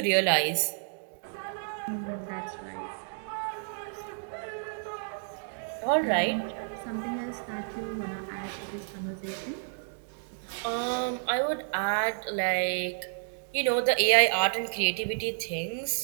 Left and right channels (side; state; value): left; silent; digital silence